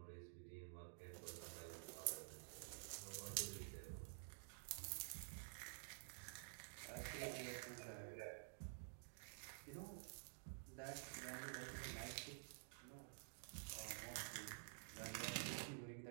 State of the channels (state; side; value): silent; left; digital silence